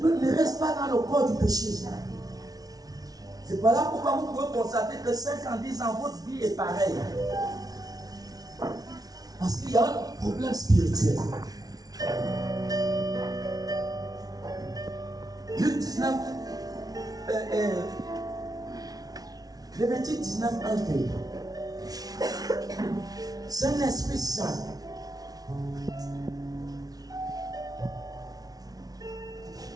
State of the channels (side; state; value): left; late; 0.18 ms